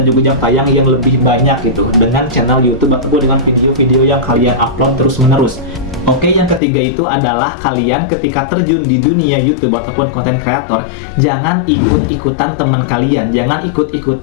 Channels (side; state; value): right; drops out; at 6.6 s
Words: juga jam tayang yang lebih banyak gitu dengan channel YouTube ataupun dengan video-video yang kalian upload terus-menerus. Oke, yang ketiga itu adalah kalian ketika terjun di dunia YouTube ataupun content creator, jangan ikut-ikutan teman kalian, jangan